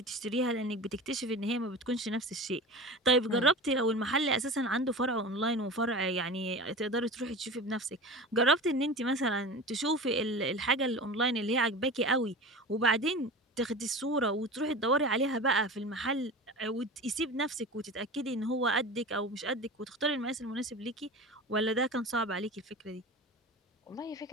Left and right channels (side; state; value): both; normal; correlation 0.32